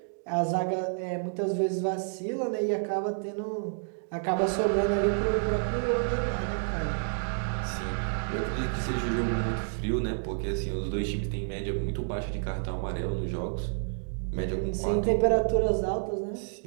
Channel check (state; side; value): silent; left; digital silence